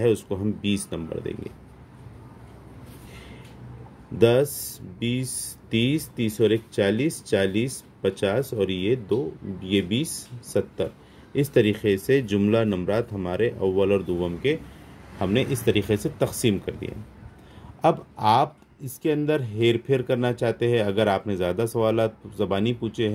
उसको हम 20 नंबर देंगे। 10, 20, 30, 30 और 1 40, 40, 50 और ये 2, ये 20, 70। इस तरीके से जुमला नंबरात हमारे अव्वल और दुवम के हमने इस तरीके से तकसीम कर दिए। अब आप इसके अंदर हेर फेर करना चाहते हैं, अगर आपने ज़्यादा सवालात ज़बानी पूछे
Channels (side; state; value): both; identical; correlation 1.00